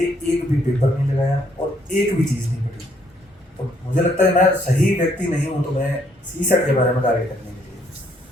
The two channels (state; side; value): normal; both; correlation 0.69